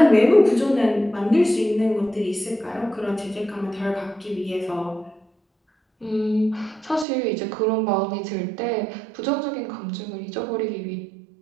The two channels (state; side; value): drops out; left; at 7.1 s